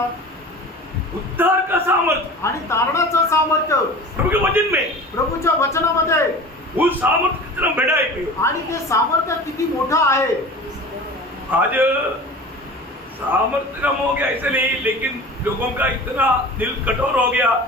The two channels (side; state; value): both; normal; correlation 0.38